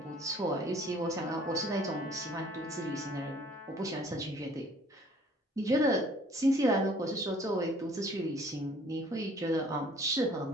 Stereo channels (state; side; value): normal; both; correlation 0.55